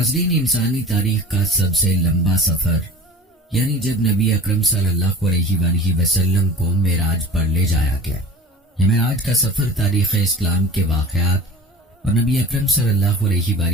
انسانی تاریخ کا سب سے لمبا سفر یعنی جب نبی اکرم صلی اللہ علیہ وآلہ وسلم کو معراج پر لے جایا گیا، یہ معراج کا سفر تاریخ اسلام کے واقعات اور نبی اکرم صلی اللہ علیہ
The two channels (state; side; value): normal; both; correlation 0.39